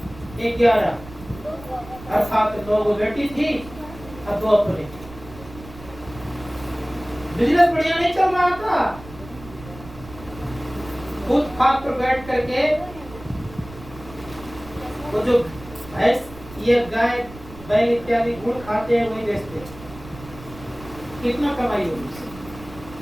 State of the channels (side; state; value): right; noise; rumble, 17 dB below the sound